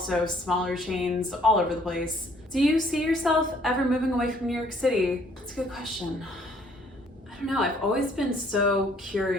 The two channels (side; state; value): both; normal; correlation 0.62